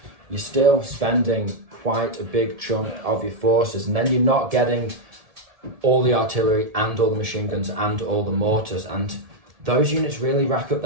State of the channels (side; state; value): left; late; 1.7 ms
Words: you're still spending quite a big chunk of your forces, and then you're not getting all the artillery and all the machine guns and all the mortars, and those units really rack up.